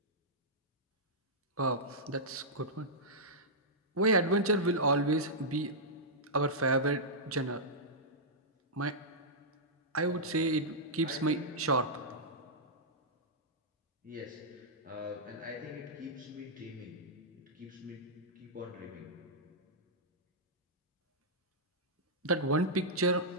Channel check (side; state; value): both; normal; correlation -0.11